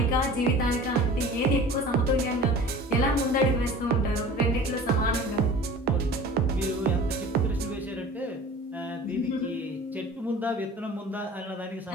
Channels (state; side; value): normal; both; correlation 0.41